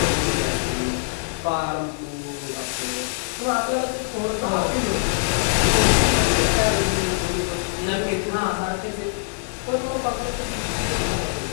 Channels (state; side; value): silent; right; 61 dB below the other